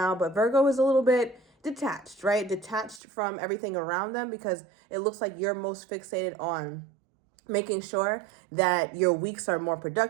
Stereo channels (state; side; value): drops out; left; at 3.0 s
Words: But Virgo is a little bit detached, right? Detached from everything around them because it looks like you're most fixated on making sure that your weeks are more